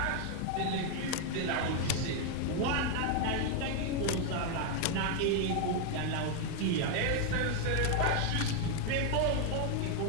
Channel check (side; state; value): both; different; correlation 0.01